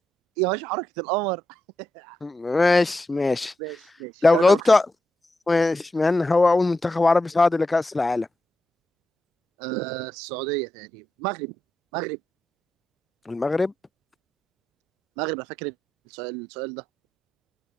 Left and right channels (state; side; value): normal; both; correlation 0.87